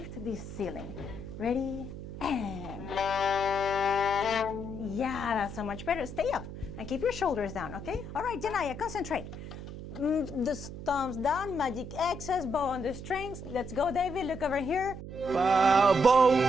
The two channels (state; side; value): noise; right; hum, 10 dB below the sound